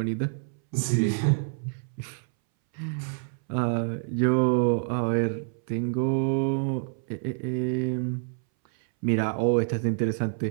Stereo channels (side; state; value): left; silent; 60 dB below the other